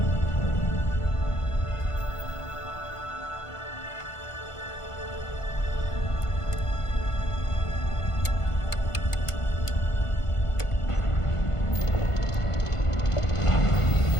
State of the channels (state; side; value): late; right; 1.5 ms